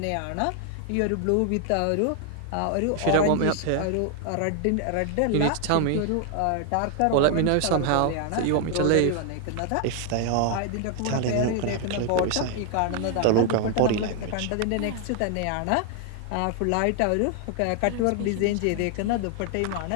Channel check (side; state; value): both; different; correlation 0.00